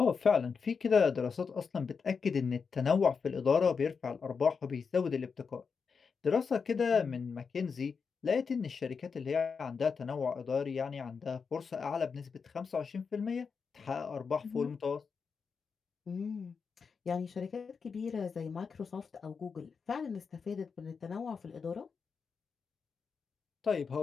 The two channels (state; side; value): quieter; right; 5.6 dB